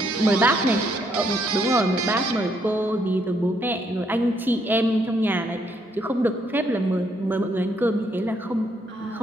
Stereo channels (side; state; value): both; normal; correlation 0.72